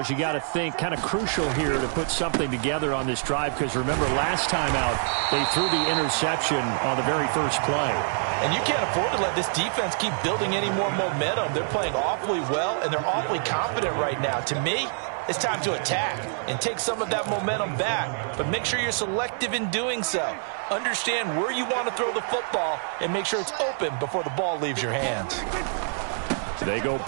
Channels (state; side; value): silent; left; digital silence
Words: you got to think kind of crucial here to put something together on this drive, because remember last time out they threw the interception on the very first play. And you can't afford to let this defense keep building any more momentum. They're playing awfully well, and they're awfully confident right now. To me, it's time to attack and take some of that momentum back. But make sure you're selective in doing so. Understand where you want to throw the football and make sure it's open before the ball leaves your hands. They go